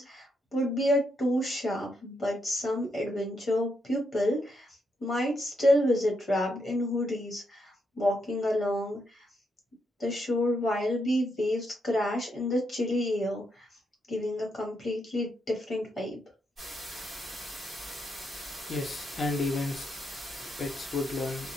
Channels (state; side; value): normal; both; correlation 0.80